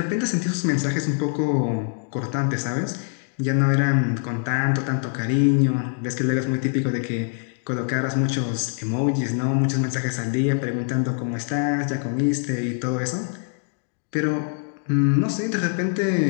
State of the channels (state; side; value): silent; right; 63 dB below the other